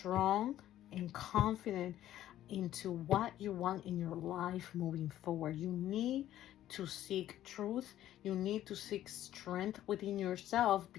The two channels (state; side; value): quieter; right; 12.7 dB